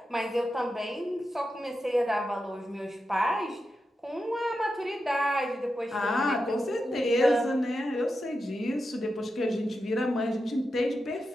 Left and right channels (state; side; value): normal; both; correlation 0.89